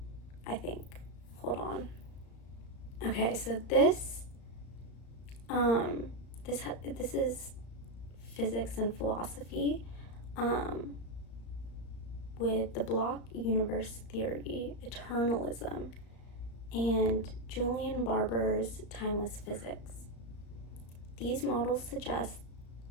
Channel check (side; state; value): right; late; 35 ms